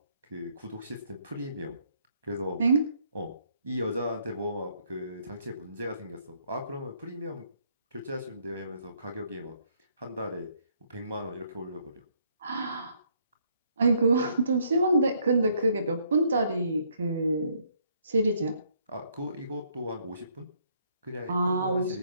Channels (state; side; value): inverted; both; correlation -0.68